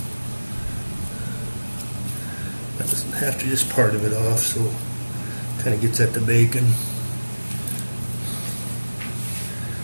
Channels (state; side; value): inverted; both; correlation -1.00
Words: That doesn't have to, just part of it off, so kind of gets at the bacon.